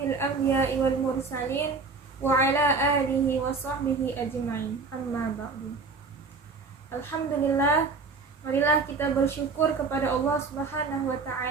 anbiya'i wal mursalin wa ala alihi wa sahbihi ajma'in. Amma ba'du. Alhamdulillah, marilah kita bersyukur kepada Allah Subhanahu wa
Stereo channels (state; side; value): quieter; left; 4.3 dB